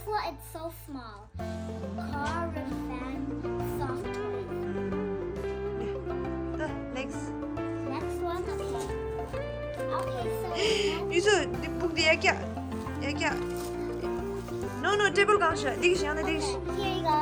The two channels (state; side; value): identical; both; correlation 1.00